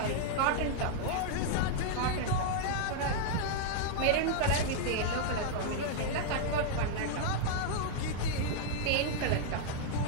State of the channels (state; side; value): different; both; correlation -0.01